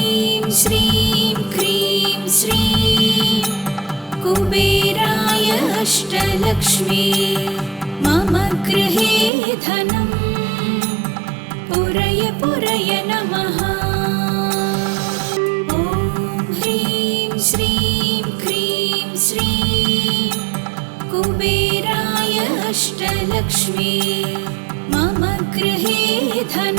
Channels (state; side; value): drops out; left; at 9.3 s